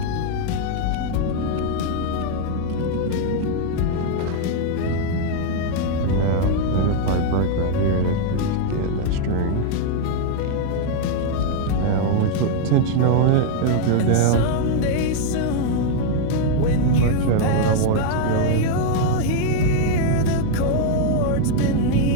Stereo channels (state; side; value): different; both; correlation 0.00